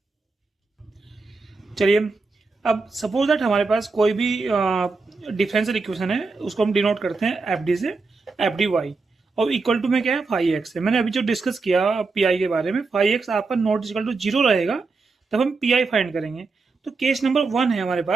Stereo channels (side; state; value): left; quieter; 4.1 dB